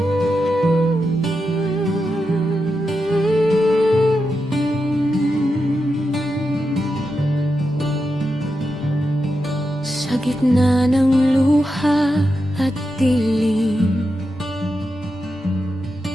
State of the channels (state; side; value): normal; both; correlation 0.87